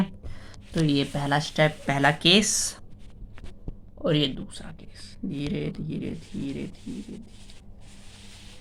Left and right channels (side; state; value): both; identical; correlation 1.00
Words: तो ये पहला स्टेप, पहला केस, और ये दूसरा केस, धीरे धीरे धीरे धीरे।